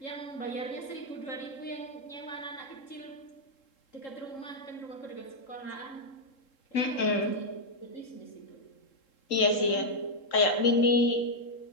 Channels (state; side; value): late; right; 3.7 ms